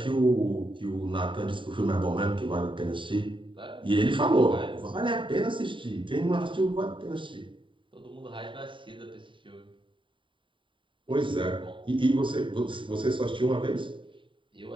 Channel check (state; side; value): late; left; 0.24 ms